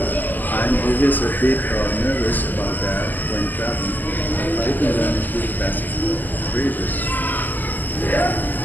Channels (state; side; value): late; right; 0.085 ms